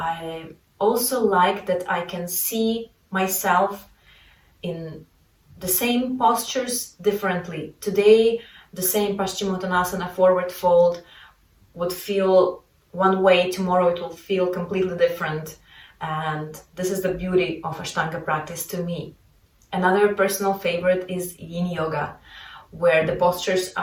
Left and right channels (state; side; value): identical; both; correlation 1.00